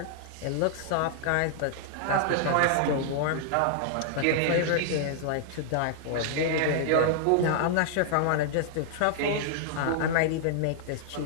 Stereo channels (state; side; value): different; both; correlation -0.01